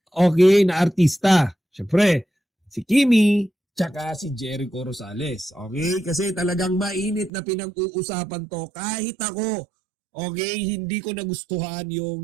okay, na artista. Syempre, si Kimi, tsaka si Jericho Rosales. Okay, kasi talagang mainit na pinag-uusapan to kahit ako. Okay, hindi ko nagustuhan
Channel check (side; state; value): left; drops out; at 7.3 s